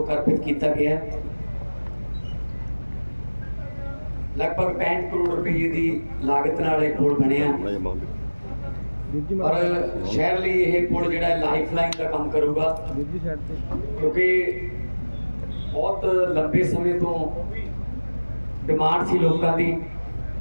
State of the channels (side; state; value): both; inverted; correlation -1.00